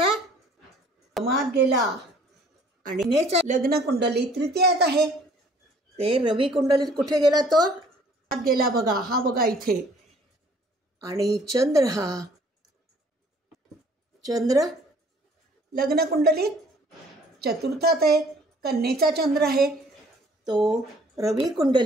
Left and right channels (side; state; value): both; normal; correlation 0.57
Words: मात गेला. आणि नेचा लग्नकुंडलीत तृतीयात आहे, ते रवी कुंडलीत कुठे गेला? तो मात गेला बघा. हा बघा इथे. आणि चंद्र लग्नकुंडलीत 4थात आहे, कन्येचा चंद्र आहे. तो रवी